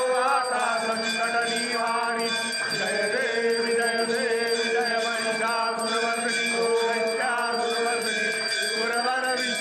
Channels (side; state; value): both; identical; correlation 1.00